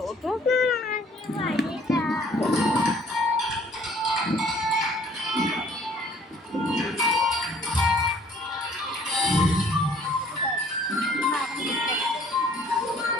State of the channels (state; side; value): normal; both; correlation 0.57